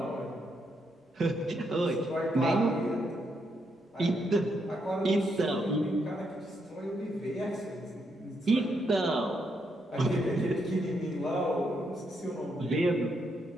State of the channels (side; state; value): both; normal; correlation 0.78